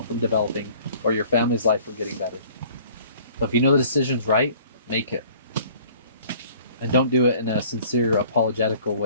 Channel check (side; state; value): both; inverted; correlation -0.53